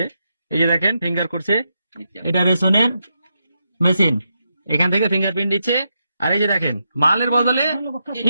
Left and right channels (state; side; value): inverted; both; correlation -0.84